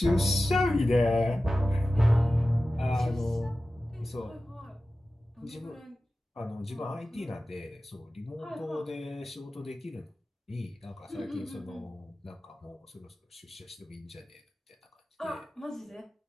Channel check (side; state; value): both; normal; correlation 0.95